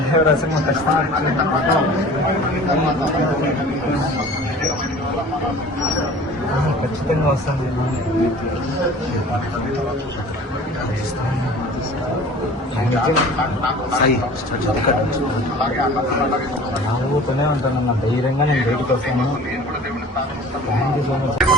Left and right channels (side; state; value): both; normal; correlation 0.44